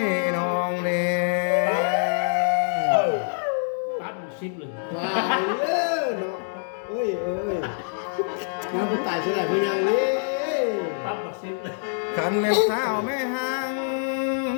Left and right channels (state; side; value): silent; right; 61 dB below the other